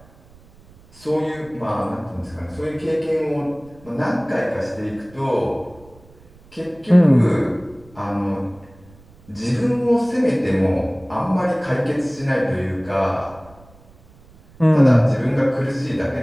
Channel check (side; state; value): right; noise; rumble, 26 dB below the sound